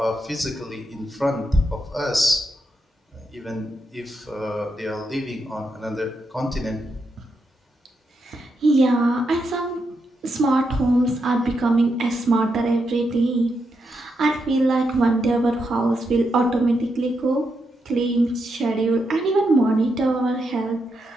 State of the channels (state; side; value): normal; both; correlation 0.83